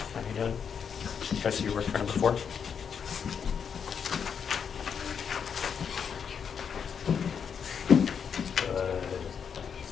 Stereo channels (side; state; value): right; quieter; 7.0 dB